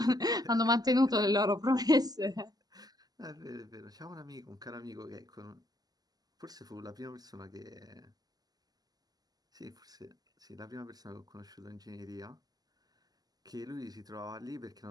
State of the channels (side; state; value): left; late; 0.19 ms